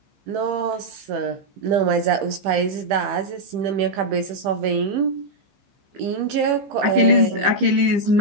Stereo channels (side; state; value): left; late; 15 ms